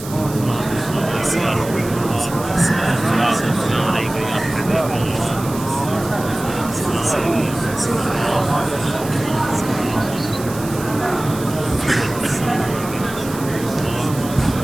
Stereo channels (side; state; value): right; noise; hiss, 14 dB below the sound